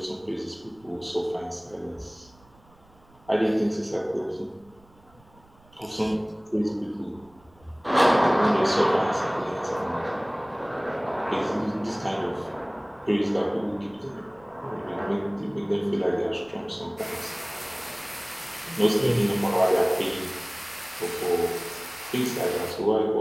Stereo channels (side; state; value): right; noise; rumble, 29 dB below the sound